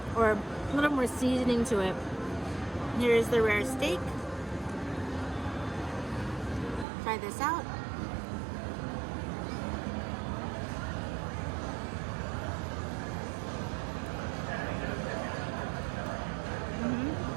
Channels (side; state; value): left; drops out; at 6.9 s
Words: or a little more seasoning to it. Here's the rare steak. Try this out.